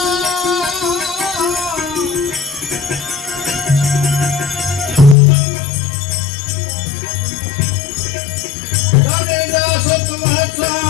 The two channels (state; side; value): drops out; right; at 5.2 s